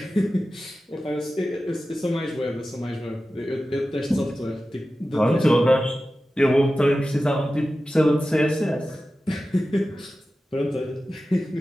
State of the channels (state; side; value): normal; both; correlation 0.94